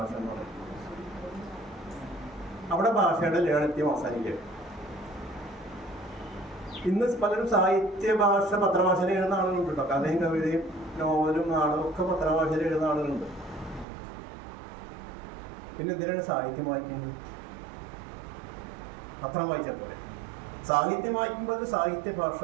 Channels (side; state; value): left; drops out; at 13.9 s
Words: എന്ന് പറയുന്നത്. അവിടെ ഭാഷയുടെ ലാളിത്യം അവസാനിക്കുക. ഇന്ന് പലരും സാഹിത്യ ഭാഷ പത്രഭാഷയിൽ എഴുതുന്ന ആളുകളുണ്ട് കേട്ടോ. കഥയും കവിതയും നോവലും നാടകവും ഒക്കെ പത്രഭാഷയിൽ എഴുതുന്ന ആളുകളുണ്ട്. പിന്നെ എന്തിനാണ് സാഹിത്യം വായിക്കുന്നത്? പത്രം വായിച്ചാൽ പോലെ. സാഹിത്യം വായിക്കുമ്പോൾ അത് സാഹിത്യ